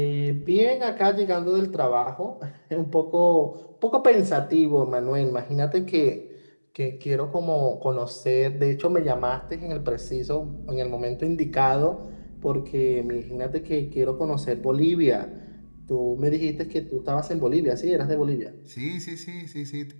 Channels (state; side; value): inverted; both; correlation -1.00